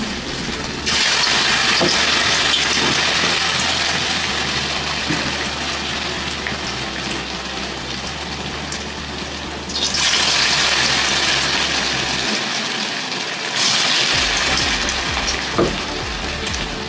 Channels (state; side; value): identical; both; correlation 1.00